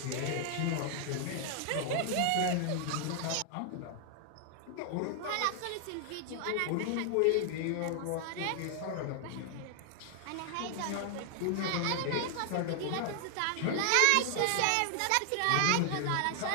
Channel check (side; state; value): both; different; correlation 0.00